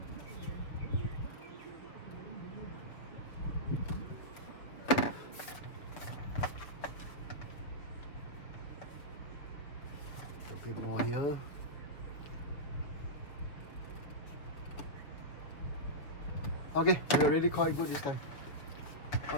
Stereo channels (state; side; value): late; right; 6.5 ms